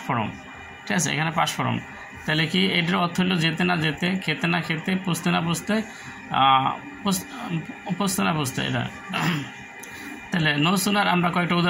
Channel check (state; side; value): identical; both; correlation 1.00